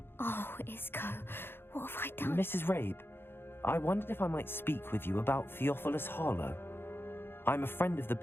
Oh, Isco, what have I done? Mrs. Rabe, I wondered if I might speak with you about Theophilus Harlow. I'm a friend of the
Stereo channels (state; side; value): late; right; 0.11 ms